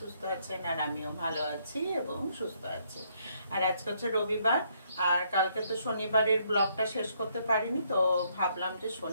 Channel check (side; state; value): both; inverted; correlation -0.71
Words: আছেন, আর আমিও ভালো আছি এবং সুস্থ আছি। আর আজকে হচ্ছে রবিবার, আর কালকে তো শনিবারের ব্লগটা শেষ করতে পারিনি, তো ভাবলাম যে